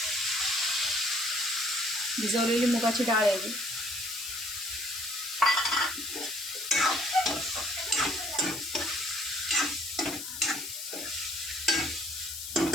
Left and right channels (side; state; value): left; noise; hiss, 8 dB below the sound